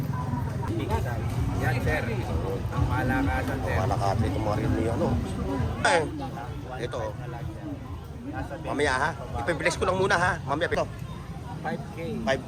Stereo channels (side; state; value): both; identical; correlation 1.00